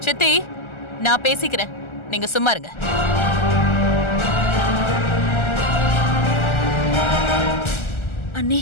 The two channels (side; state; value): right; late; 1.4 ms